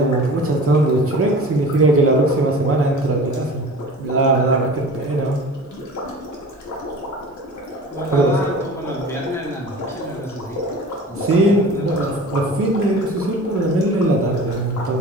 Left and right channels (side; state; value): both; normal; correlation 0.39